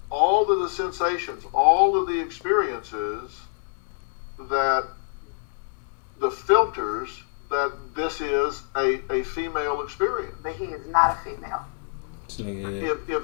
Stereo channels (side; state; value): right; silent; 61 dB below the other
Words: all of the sensations, all of the experiences that the filters that this is a female experience. but he is not a female. This nigga,